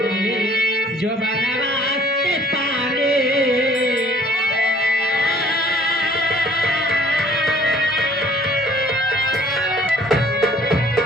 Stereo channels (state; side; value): normal; both; correlation 0.56